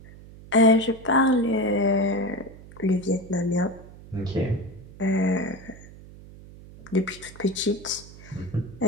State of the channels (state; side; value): noise; right; hum, 19 dB below the sound